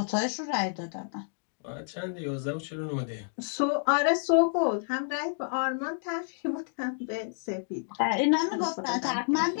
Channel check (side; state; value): right; silent; digital silence